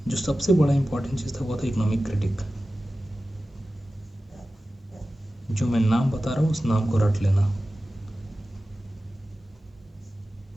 जो सबसे बड़ा इंपॉर्टेंट चीज़ था वो था इकोनॉमिक क्रिटिक। जो मैं नाम बता रहा हूँ उस नाम को रट लेना।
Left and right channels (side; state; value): both; normal; correlation 0.95